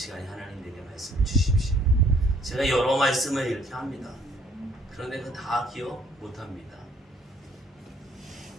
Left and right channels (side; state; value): both; normal; correlation 0.62